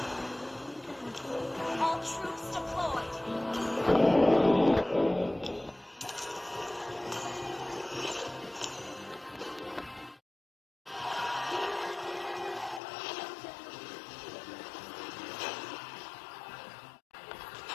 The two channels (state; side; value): drops out; right; at 12.8 s